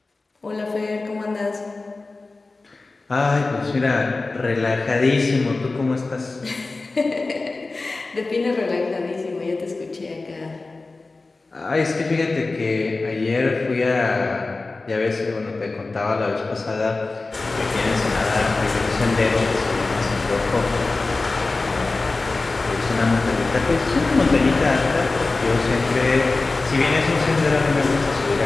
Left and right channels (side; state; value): right; quieter; 3.5 dB